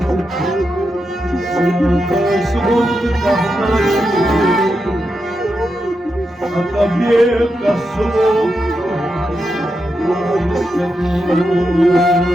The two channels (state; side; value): normal; both; correlation 0.86